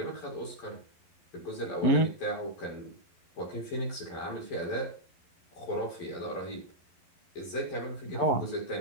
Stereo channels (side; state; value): right; late; 11 ms